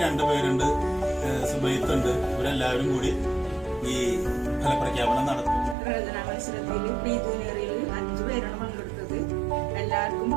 2 പേരുണ്ട്, സുബൈത്തുണ്ട്, ഇവരെല്ലാവരും കൂടി ഈ ഫലപ്രഖ്യാപനം നടത്തും. പ്രയോജന മത്സരത്തിൽ പ്രീ ജൂനിയറിൽ 5 പേരാണ് പങ്കെടുത്തത്. എല്ലാവർക്കും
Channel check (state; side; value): drops out; left; at 5.8 s